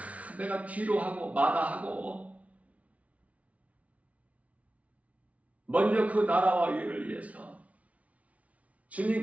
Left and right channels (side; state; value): left; late; 0.067 ms